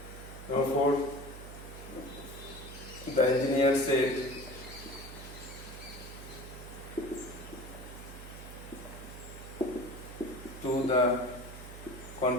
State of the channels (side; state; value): right; noise; hum, 13 dB below the sound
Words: Number 4, the engineer said, to the